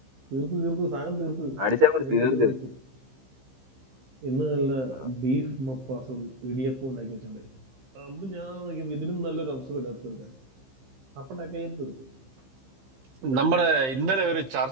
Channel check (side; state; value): left; late; 15 ms